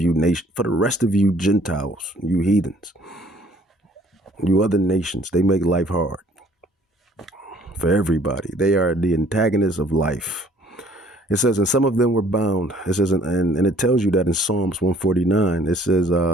for the rest of you Gentiles, you heathens, you other nations. They make life hard for everybody. They are the antagonists of life. It says, and some of them were bound. It says, and it tells you that in Psalms 149, it says,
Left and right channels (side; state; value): both; normal; correlation 0.58